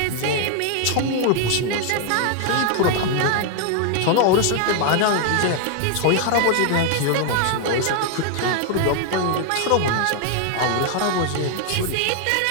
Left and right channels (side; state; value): both; different; correlation 0.00